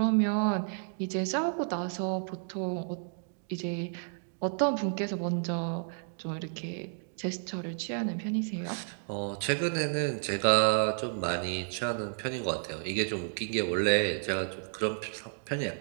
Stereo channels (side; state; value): left; silent; digital silence